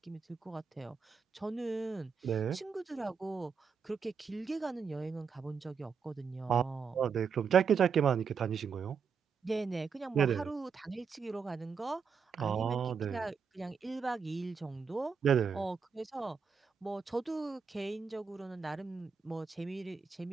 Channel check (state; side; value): quieter; left; 6.0 dB